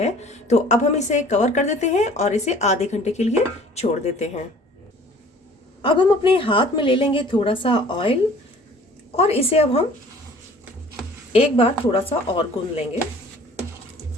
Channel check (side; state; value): both; normal; correlation 0.50